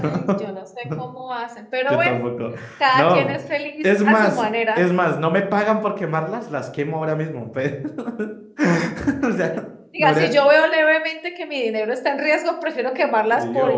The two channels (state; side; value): identical; both; correlation 1.00